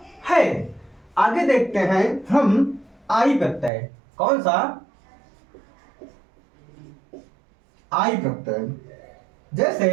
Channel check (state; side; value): drops out; left; at 3.7 s